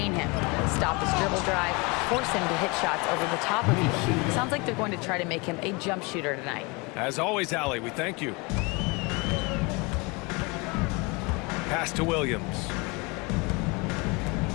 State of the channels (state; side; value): quieter; right; 27.8 dB